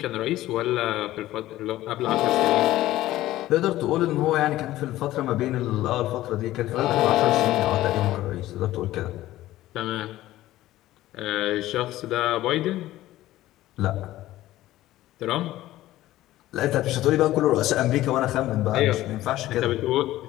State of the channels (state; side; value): quieter; right; 15.4 dB